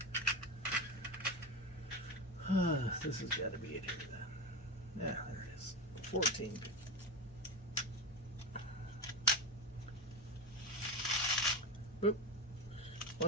This has got to be it here then. Yeah, there it is. 14. Oop.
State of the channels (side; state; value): both; normal; correlation 0.19